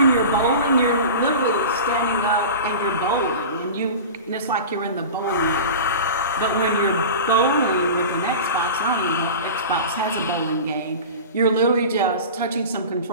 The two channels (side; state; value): both; inverted; correlation -0.32